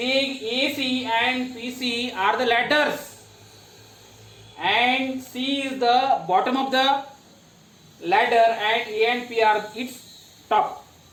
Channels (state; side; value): identical; both; correlation 1.00